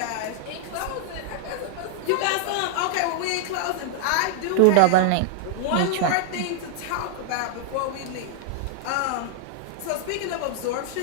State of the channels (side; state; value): both; different; correlation -0.01